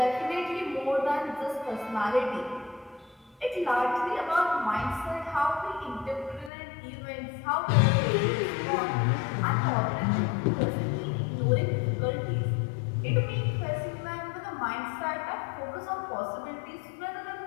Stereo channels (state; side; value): drops out; right; at 6.5 s